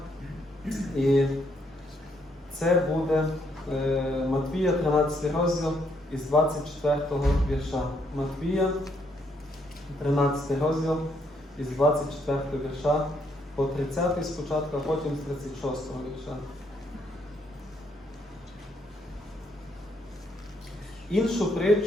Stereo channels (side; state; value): both; normal; correlation 0.73